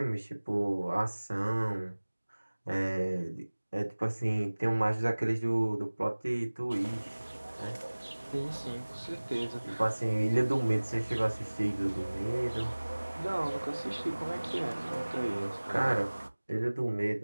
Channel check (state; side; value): inverted; both; correlation -1.00